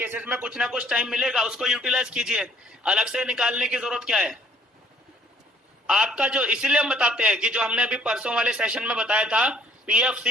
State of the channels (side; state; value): both; normal; correlation 0.61